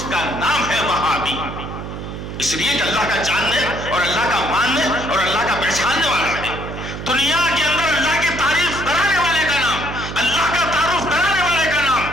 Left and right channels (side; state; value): right; noise; hum, 8 dB below the sound